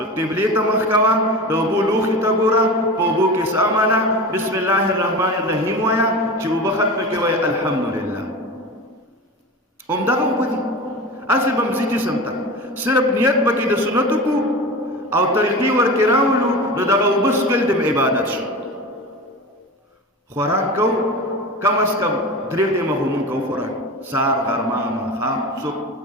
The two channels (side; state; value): both; normal; correlation 0.30